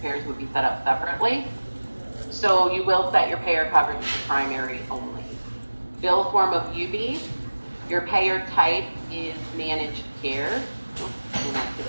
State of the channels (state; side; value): inverted; both; correlation -1.00